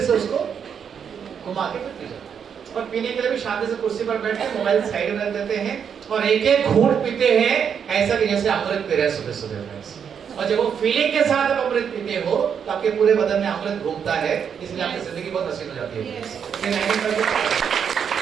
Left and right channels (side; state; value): left; quieter; 7.5 dB